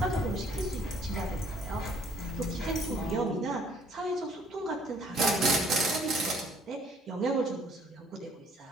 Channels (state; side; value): normal; both; correlation 0.60